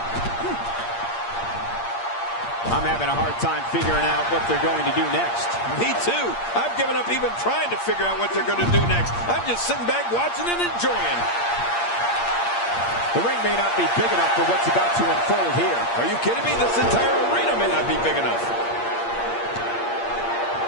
I'm having a hard time figuring out what they're going to do next. Me too. I've given up even trying to figure out what they're going to do next. I'm just sitting back watching and enjoying. The ring may not be big enough for what's about to unfold here. Are you kidding me? This entire arena may not be big enough.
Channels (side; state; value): right; late; 8.6 ms